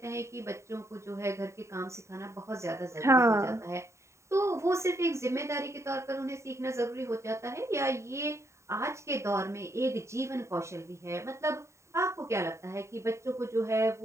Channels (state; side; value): late; left; 0.14 ms